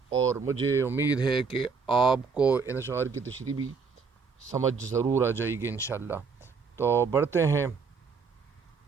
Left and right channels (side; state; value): left; quieter; 5.2 dB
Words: اور مجھے امید ہے کہ آپ کو ان اشعار کی تشریح بھی سمجھ ضرور آ جائے گی انشاءاللہ۔ تو بڑھتے ہیں